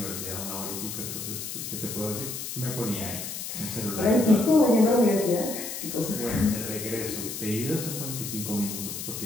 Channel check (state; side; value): noise; left; hiss, 6 dB below the sound